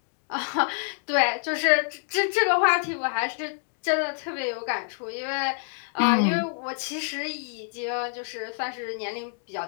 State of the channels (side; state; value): right; silent; 60 dB below the other